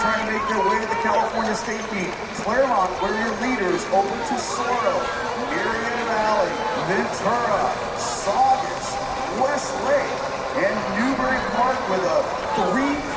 to make their way to the California State meet. Claremont, where are your leaders? Over Tesoro, Murrieta Valley, Ventura, Saugus, Westlake, and Newbury Park with a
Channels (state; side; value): identical; both; correlation 1.00